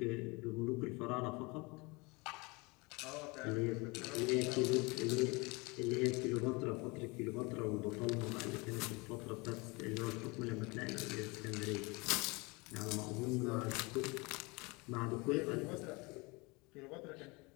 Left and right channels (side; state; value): right; quieter; 26.7 dB